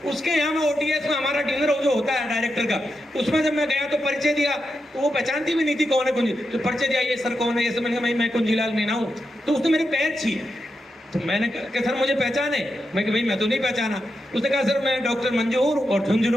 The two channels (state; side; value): normal; both; correlation 0.86